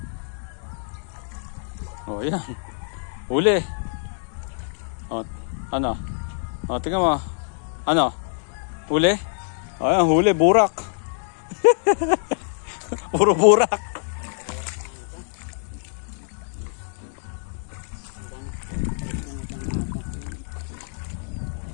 Oh, yan. Huli. Oh, ano? Oh, tingnan mo. Ano? Huli? Oh, yan, huli, burak. Puro burak.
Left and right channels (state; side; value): silent; right; 59 dB below the other